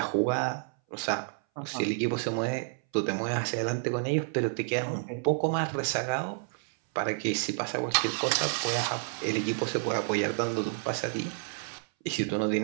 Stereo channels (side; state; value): left; silent; 58 dB below the other